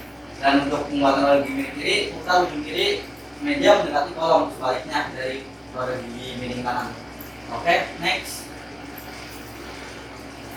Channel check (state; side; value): identical; both; correlation 1.00